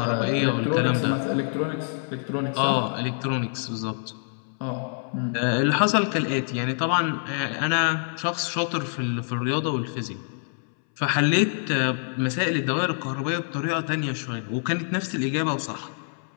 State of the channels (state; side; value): silent; right; 61 dB below the other